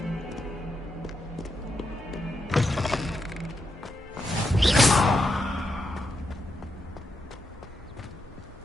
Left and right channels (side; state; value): both; normal; correlation 0.83